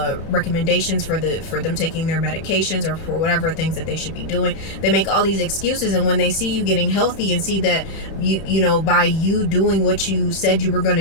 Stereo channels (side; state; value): right; late; 30 ms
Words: recommendations for them taking their medications or for whatever things that they should be doing. They make all these excuses, and when they see you getting healthy and see that you by you doing what you said you were going